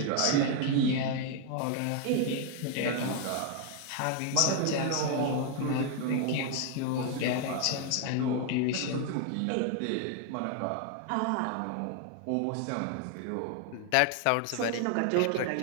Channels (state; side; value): different; both; correlation 0.00